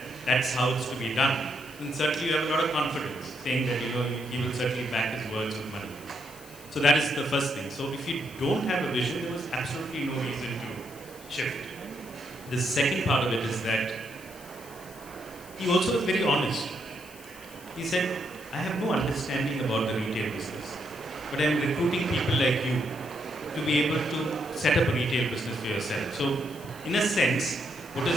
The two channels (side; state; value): left; noise; hiss, 20 dB below the sound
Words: that's how it's to be done. And certainly you have a lot of confidence, saying that he will certainly back his words with money. So that is the first thing. So if you don't have a vision, there was absolutely no reason to shift. The second part of it is that he also was very honest. He said, I have no understanding about the retail business, but I am recruiting people like you to be able to set up a retail business for yourself. So in a sense, what